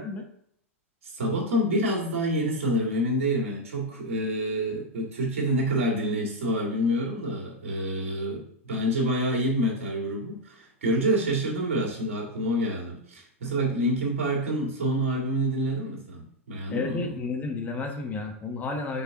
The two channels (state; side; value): normal; both; correlation 0.01